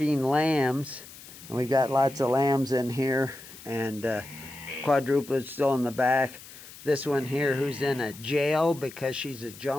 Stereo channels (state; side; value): noise; left; hiss, 17 dB below the sound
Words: lambs, and we've got lots of lambs in here, and quadruplet's still in the back. This one here, who's in a jail because she's a